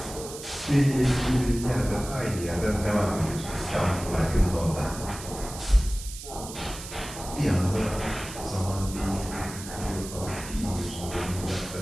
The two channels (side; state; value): right; noise; hiss, 12 dB below the sound